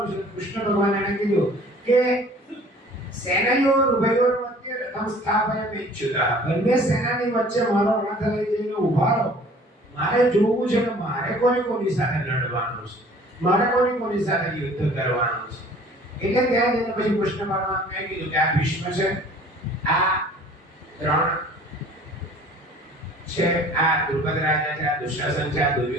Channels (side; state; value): both; normal; correlation 0.50